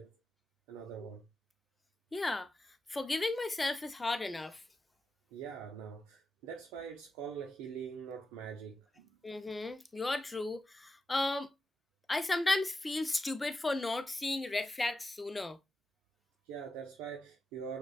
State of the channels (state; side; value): normal; both; correlation 0.90